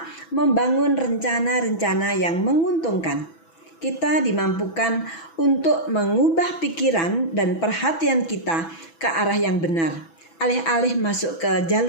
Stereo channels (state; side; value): late; right; 6.1 ms